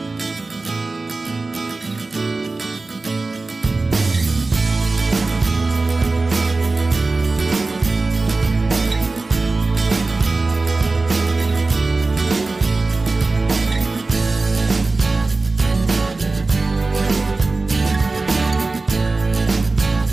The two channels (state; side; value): quieter; left; 3.5 dB